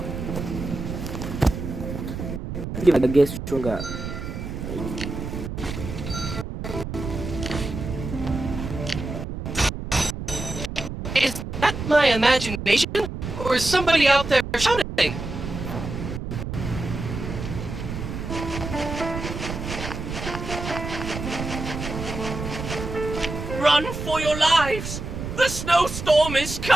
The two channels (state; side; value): noise; right; rumble, 6 dB below the sound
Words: If I get stronger. Is that my imagination? Or is somebody out there shouting? Run for your lives! The snowstorm is